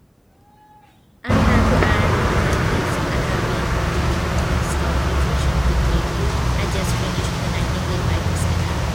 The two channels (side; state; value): both; identical; correlation 1.00